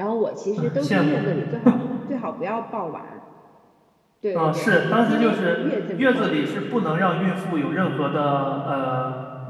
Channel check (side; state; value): both; identical; correlation 1.00